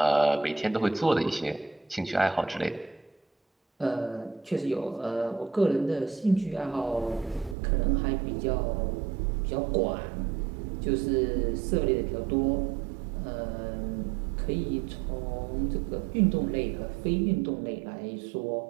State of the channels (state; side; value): drops out; left; at 7.6 s